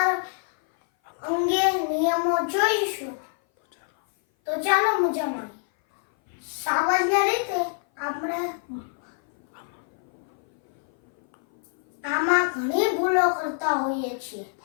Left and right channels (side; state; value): right; silent; 58 dB below the other